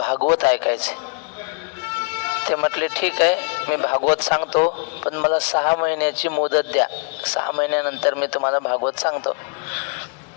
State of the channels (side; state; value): right; quieter; 37.8 dB